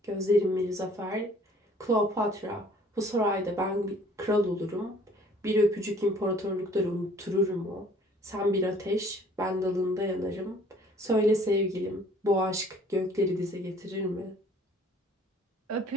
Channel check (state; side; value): normal; both; correlation 0.55